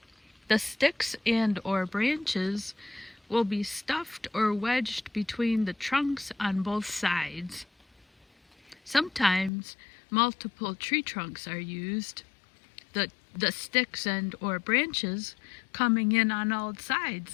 the sticks and or branches will be stuffed or wedged between the trunks on both sides. Sometimes multiple tree trunks are used, the sticks and or branches coming in on all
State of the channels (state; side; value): drops out; right; at 9.5 s